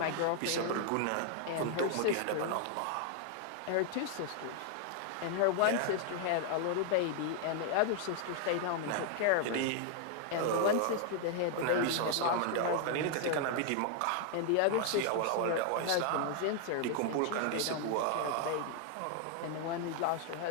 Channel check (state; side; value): different; both; correlation 0.00